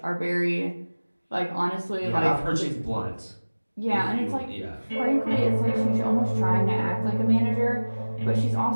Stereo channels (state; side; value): inverted; both; correlation -1.00